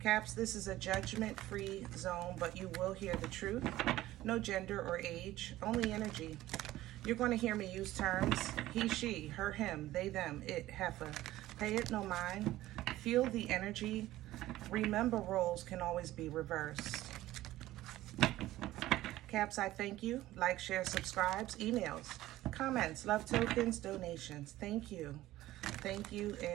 this is a judgment-free zone, but you will hear the truth. No gender or age, only energy. You're going to hear me use terms he, she, her, him, they, them, it, heifer. Pay it no mind. Feel the energy. Remember, roles can always be reversed. Caps, I thank you. Like, share, subscribes, emails, comments, love tokens, donations. Thank you. Thank you,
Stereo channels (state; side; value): quieter; left; 15.7 dB